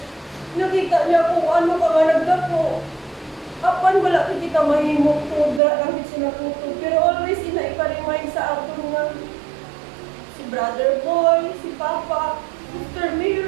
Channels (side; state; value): left; drops out; at 5.6 s